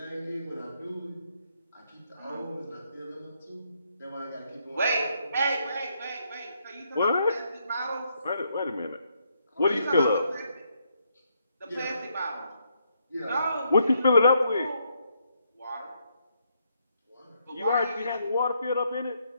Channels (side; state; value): both; inverted; correlation -0.76